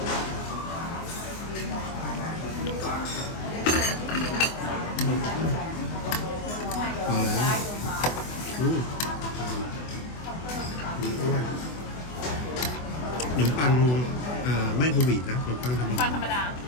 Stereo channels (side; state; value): right; late; 24 ms